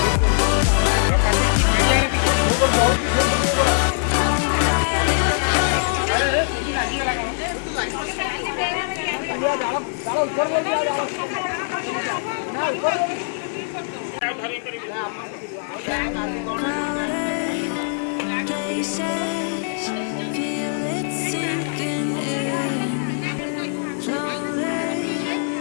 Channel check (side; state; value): right; silent; 58 dB below the other